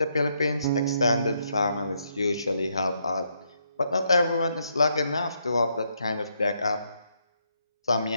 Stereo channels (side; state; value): both; inverted; correlation -0.76